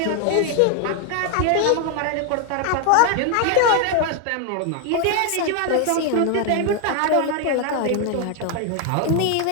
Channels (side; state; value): both; different; correlation 0.00